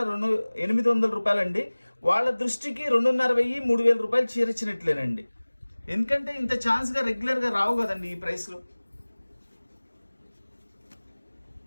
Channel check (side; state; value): both; inverted; correlation -1.00